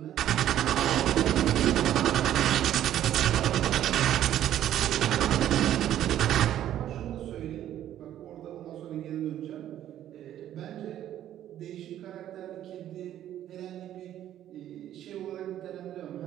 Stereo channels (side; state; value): left; quieter; 11.7 dB